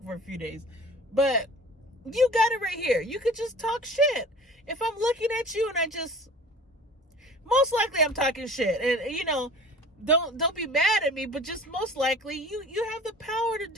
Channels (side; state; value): both; normal; correlation 0.44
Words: for a few days. But you got it right here. You could just talk shit. If I'm looking at you and most likely I'm talking shit. And don't be mad at me, but just most likely you have the power to